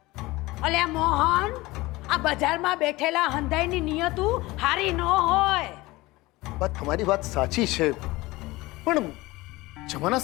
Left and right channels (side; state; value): right; quieter; 20.5 dB